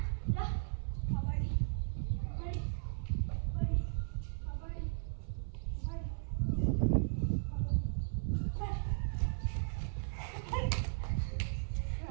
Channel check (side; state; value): left; silent; 53 dB below the other